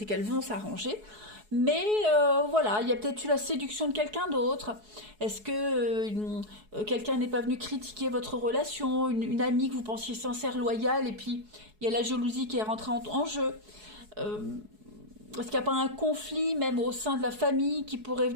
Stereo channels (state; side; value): late; left; 4.7 ms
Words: qu'elles vont s'arranger. Mais voilà, il y a peut-être eu la séduction de quelqu'un d'autre. Est-ce que quelqu'un n'est pas venu critiquer votre relation, une amie que vous pensiez sincère, loyale, et puis il y a la jalousie qui est rentrée en jeu. Est-ce qu'il n'y a pas un conflit même au sein de la famille qui pourrait